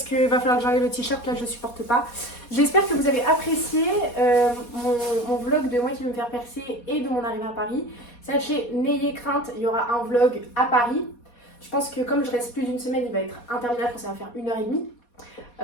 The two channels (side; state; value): right; late; 4.2 ms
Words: que va falloir que j'enlève le t-shirt, là je supporte pas. J'espère que vous avez apprécié mon vlog de moi qui veut me faire percer et de mon arrivée à Paris. Sachez, n'ayez crainte, il y aura un vlog à Paris. Je pense que comme je reste plus d'une semaine, il va être interminable, ça va faire